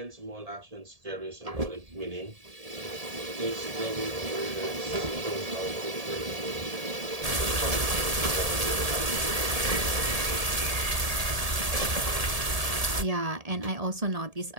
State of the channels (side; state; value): left; late; 1.7 ms